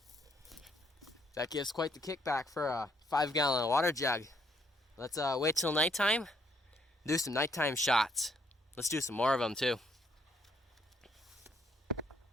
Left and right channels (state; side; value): normal; both; correlation 0.69